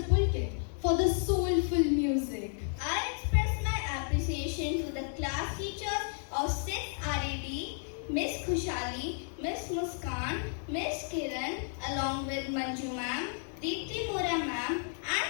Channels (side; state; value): right; silent; 56 dB below the other